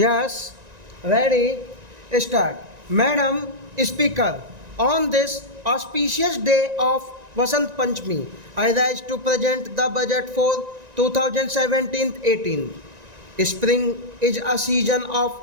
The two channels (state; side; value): late; left; 1.9 ms